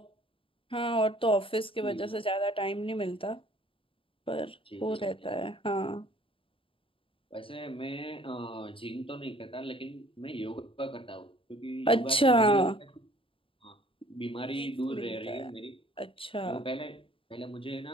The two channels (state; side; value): late; right; 0.26 ms